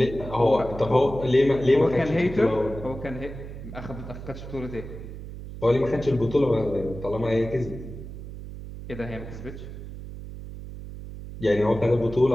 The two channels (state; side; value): noise; right; hum, 11 dB below the sound